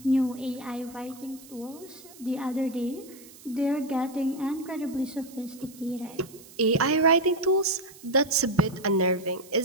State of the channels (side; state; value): right; noise; hiss, 21 dB below the sound